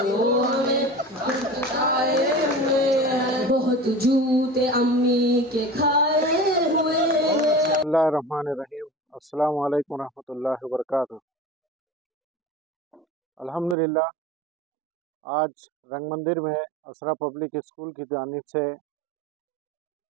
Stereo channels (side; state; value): left; drops out; at 13.8 s